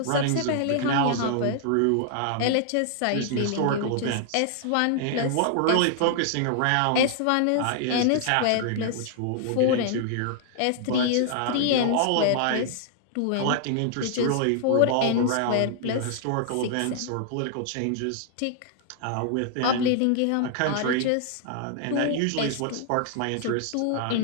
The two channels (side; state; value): both; different; correlation -0.01